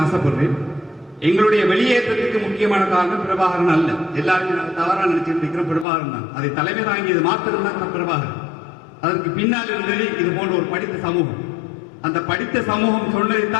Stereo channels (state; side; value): drops out; right; at 5.9 s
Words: ஆசைப்படுறேன். எங்களுடைய வெளியேற்றத்துக்கு முக்கியமான காரணம் பிரபாகரன் அல்ல. எல்லாருமே தவறாக நினைச்சிட்டு இருக்கிற பிரபாகரன் தான். அதை தலைமை தாங்கியது மாத்திரம் தான் பிரபாகரன். அதற்கு பின்னால் இருந்தது இது போன்ற ஒரு படித்த சமூகம். அந்த படித்த சமூகம்